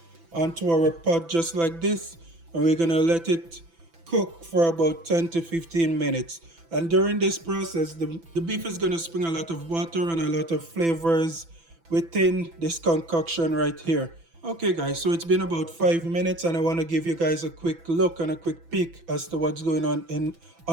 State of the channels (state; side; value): late; left; 6.0 ms